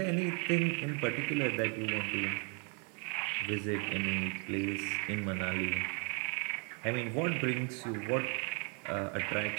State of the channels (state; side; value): quieter; left; 36.2 dB